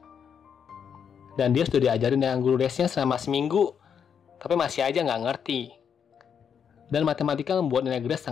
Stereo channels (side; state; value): right; quieter; 7.5 dB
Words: Dan dia sudah diajarin dengan guru lesnya selama seminggu, tapi masih aja nggak ngerti. Dan matematika membuat nilai Grace